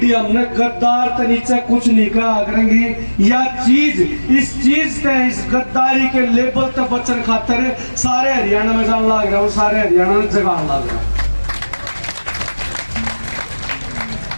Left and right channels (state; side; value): inverted; both; correlation -1.00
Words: हमने गद्दार तो नीचे कुछ नहीं कहा करेंगी। या चीज इस चीज से, इस गद्दारी के लेबल तक बचन खातर सारे हरियाणा में जान लग रहा हूँ, सारे हरियाणा में जगान लग रहा हूँ।